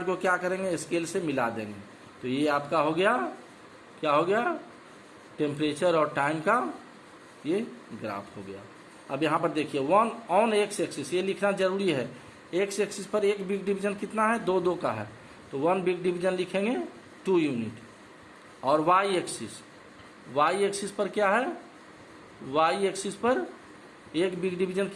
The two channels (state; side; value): identical; both; correlation 1.00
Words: को क्या करेंगे, स्केल से मिला देंगे। तो ये आपका हो गया, क्या हो गया, टेम्परेचर और टाइम का ये ग्राफ हो गया। अब यहाँ पर देखिए 1 ऑन एक्स एक्सिस, ये लिखना जरूरी है। एक्स एक्सिस पर एक बिग डिवीजन कितना है, 2 का है, तो 1 बिग डिवीजन लिखेंगे 2 यूनिट। और वाई एक्सिस पर क्या है, वाई एक्सिस पर एक बिग डिवीजन